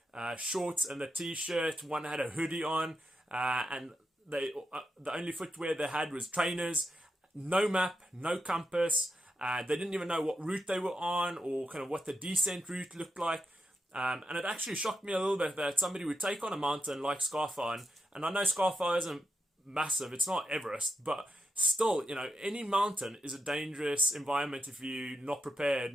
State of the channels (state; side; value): normal; both; correlation 0.84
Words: shorts and a t-shirt. One had a hoodie on, and the only footwear they had was trainers. No map, no compass. They didn't even know what route they were on, or kind of what the descent route looked like. And it actually shocked me a little bit that somebody would take on a mountain like Scarfire, and I know Scarfire isn't massive, it's not Everest, but still, any mountain is a dangerous environment if you're not prepared